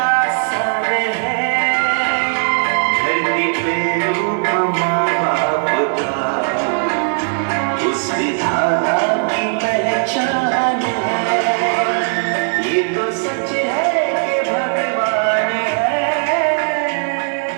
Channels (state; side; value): silent; left; digital silence